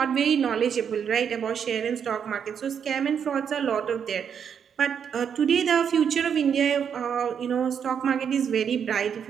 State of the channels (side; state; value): left; quieter; 7.6 dB